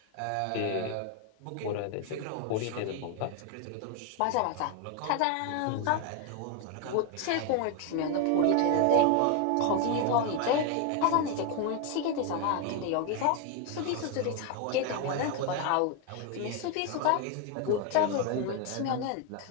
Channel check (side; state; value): both; different; correlation 0.01